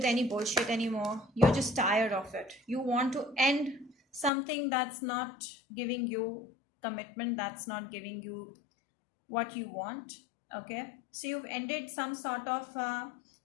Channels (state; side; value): drops out; right; at 4.3 s